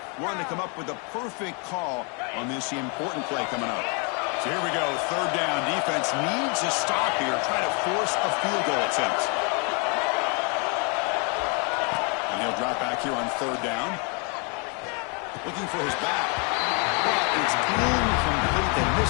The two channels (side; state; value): right; quieter; 35.2 dB